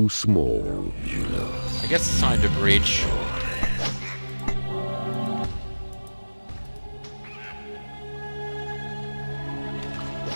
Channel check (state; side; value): inverted; both; correlation -1.00